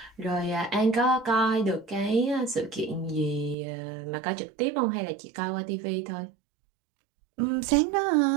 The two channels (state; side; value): drops out; left; at 3.6 s